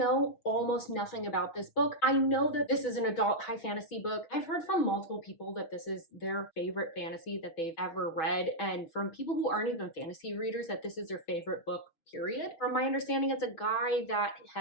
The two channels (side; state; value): right; late; 6.3 ms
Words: almost nothing about this book. I know that this is an adult high fantasy book. I've heard from multiple people that this is their favorite fantasy that they've ever read, and from people who aren't even fantasy readers that this is their favorite book, period. From my understanding, it's a guy that